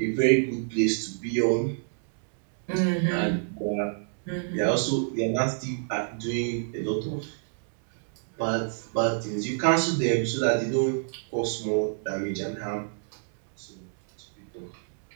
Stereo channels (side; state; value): left; silent; digital silence